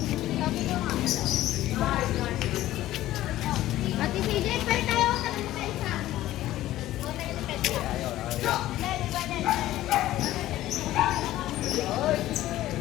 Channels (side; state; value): right; quieter; 14.8 dB